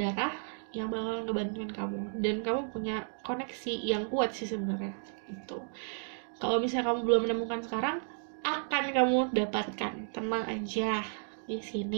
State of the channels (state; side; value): silent; left; digital silence